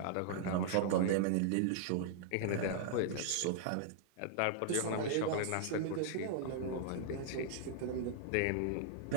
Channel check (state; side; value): different; both; correlation -0.01